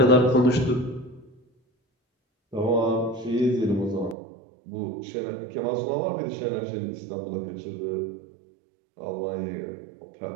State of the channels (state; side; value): drops out; left; at 4.2 s